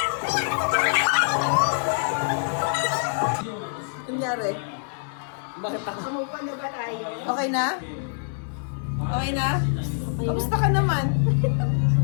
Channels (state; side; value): silent; right; 62 dB below the other